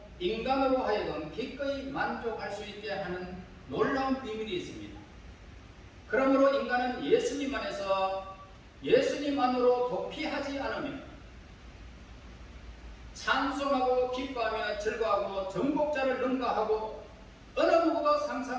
인간으로 하여금 기꺼이 만족할 수 있게 하는 놀라운 비밀이 있습니다. 그러므로 인간은 예수님 안에서 예수님 안으로 도피하지 않으면 찬송하고 기뻐하며 즐거워하고 정복자를 능가하고 어느 누구도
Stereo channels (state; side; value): identical; both; correlation 1.00